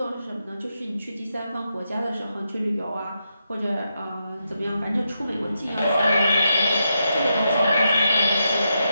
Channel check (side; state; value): both; inverted; correlation -0.84